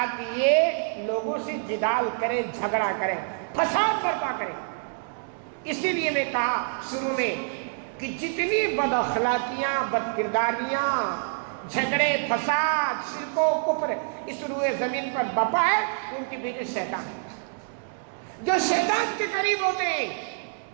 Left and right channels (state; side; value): silent; left; 60 dB below the other